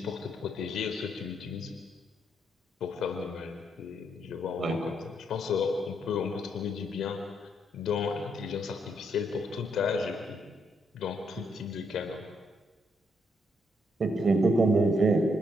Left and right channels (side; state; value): both; normal; correlation 0.75